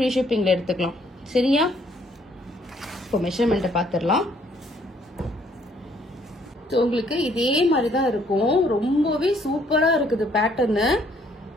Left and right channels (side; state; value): both; normal; correlation 0.65